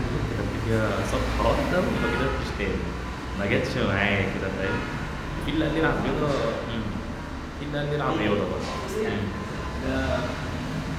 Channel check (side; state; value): both; identical; correlation 1.00